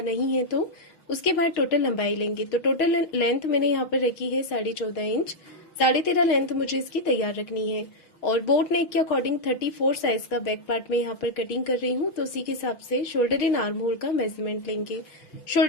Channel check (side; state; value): right; late; 6.5 ms